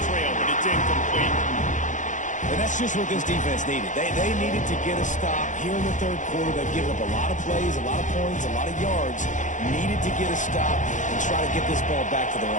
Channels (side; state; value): right; late; 0.36 ms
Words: trail, but it's incomplete. And that's just what this defense needed. They needed to get a stop here in the third quarter. They've given up a lot of plays, a lot of points, a lot of yards. Needed to get a stop and try to get this ball back to their